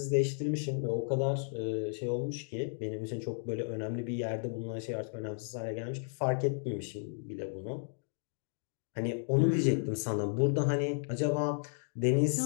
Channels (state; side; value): silent; right; digital silence